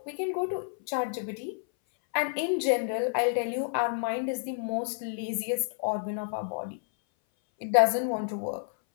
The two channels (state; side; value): silent; right; 57 dB below the other